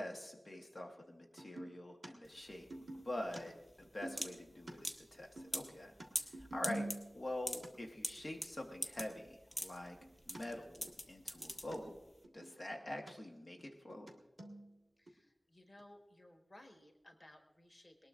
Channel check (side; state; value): both; normal; correlation 0.96